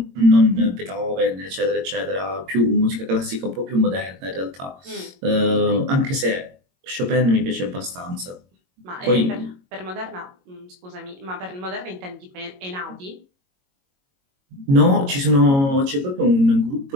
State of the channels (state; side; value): late; left; 22 ms